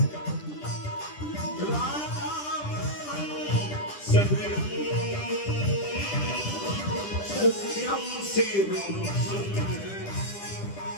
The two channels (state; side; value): late; right; 10 ms